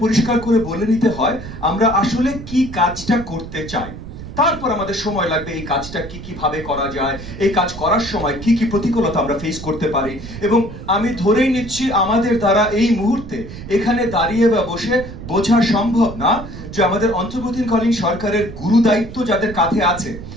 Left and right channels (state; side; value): noise; right; rumble, 12 dB below the sound